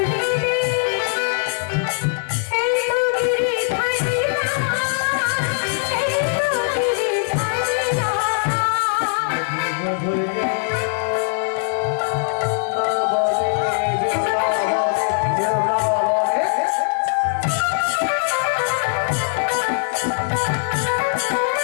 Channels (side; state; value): right; silent; digital silence